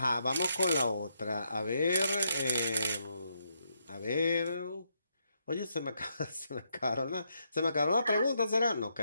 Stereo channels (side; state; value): both; inverted; correlation -0.78